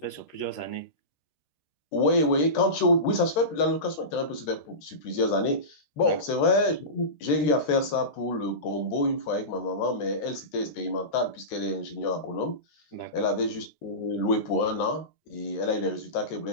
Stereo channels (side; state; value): right; late; 13 ms